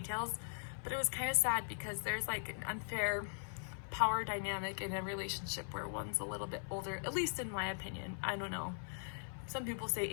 but it was kind of sad because there's like an unfair power dynamic in a relationship where one's a little bit older, at least in my opinion. I don't know. Some people say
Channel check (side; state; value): right; silent; 51 dB below the other